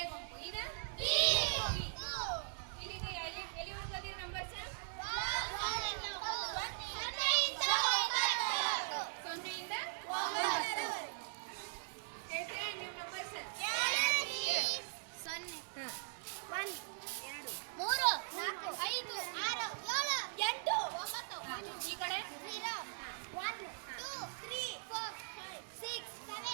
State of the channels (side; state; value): left; silent; digital silence